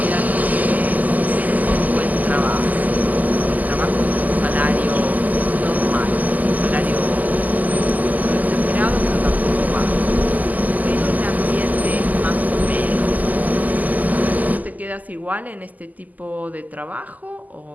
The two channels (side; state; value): left; late; 0.080 ms